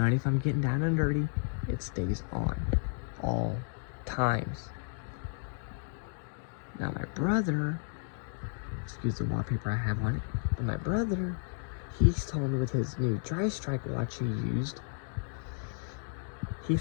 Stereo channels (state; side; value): silent; right; 56 dB below the other